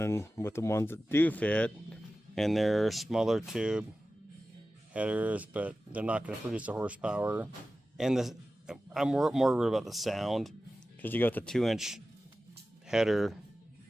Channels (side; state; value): both; normal; correlation 0.95